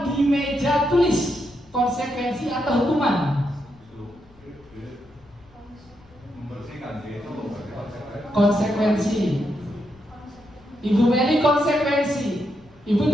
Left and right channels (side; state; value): left; noise; rumble, 28 dB below the sound